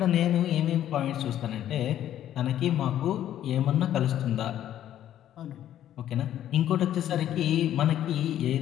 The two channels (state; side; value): quieter; right; 11.5 dB